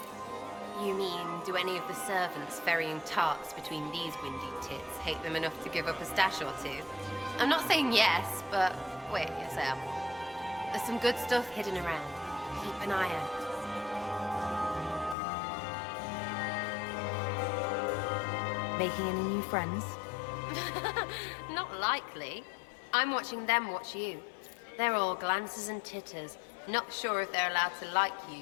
You mean, do any of the servants ferrying tarts between these windy tits hate them enough to give up a stash or two? I'm not saying yes, but wait yourself. There's some good stuff hidden around. Keep an eye out. Making any new friends? Not likely. I'm watching them watch you. They're all glances and titters. Not sure if they're allowed to like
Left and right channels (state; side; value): drops out; right; at 15.2 s